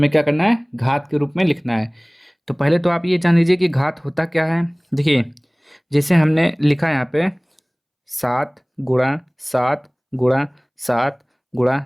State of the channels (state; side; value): identical; both; correlation 1.00